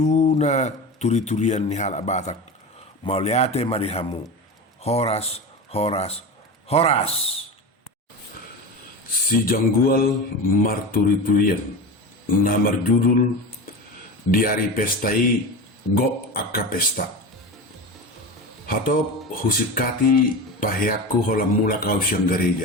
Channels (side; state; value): both; normal; correlation 0.26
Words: na turi-turian ni hal abatak. Mau liate mari hamu. Horas, horas, horas. Si janggual marturi-turian. Namar judul di hari pestai go akka pesta. Hatop husikati pahiaku hola mula kau siang